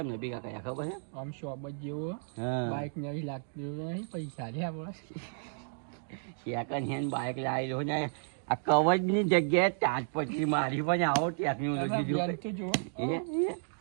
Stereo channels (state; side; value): silent; left; digital silence